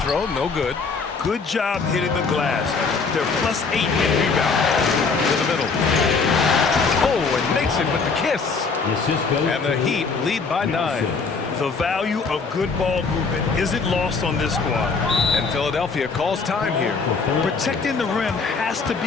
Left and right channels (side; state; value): right; quieter; 4.7 dB